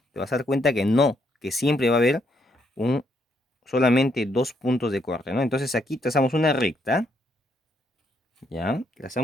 te vas a dar cuenta que no, que siempre va a haber solamente dos puntos de corte, ¿no? Entonces aquí trazamos una recta, ¿ya?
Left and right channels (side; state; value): both; normal; correlation 0.74